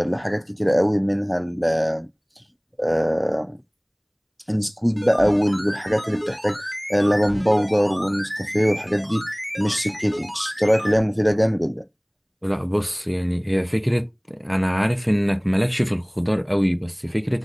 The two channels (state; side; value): identical; both; correlation 1.00